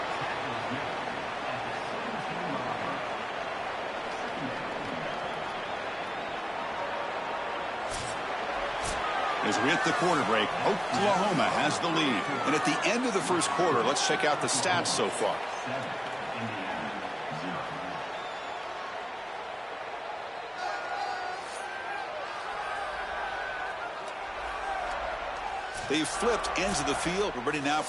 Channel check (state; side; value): identical; both; correlation 1.00